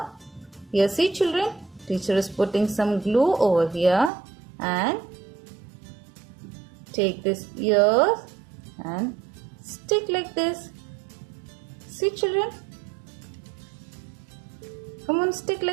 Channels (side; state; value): left; drops out; at 4.1 s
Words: here. See children, teacher is putting some glue over here and take this ears and stick like this. See children, come on, stick